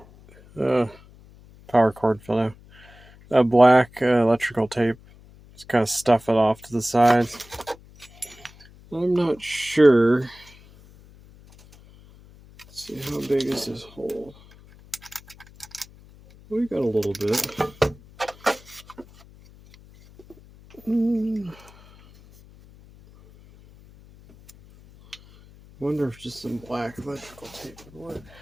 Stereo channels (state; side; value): noise; left; hum, 24 dB below the sound